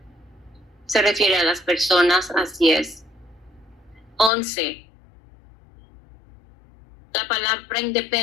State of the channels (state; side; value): drops out; right; at 4.3 s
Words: Se refiere a las personas, así es. 11. La palabra